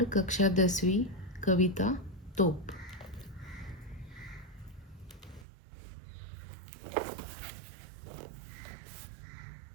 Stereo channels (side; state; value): left; drops out; at 5.5 s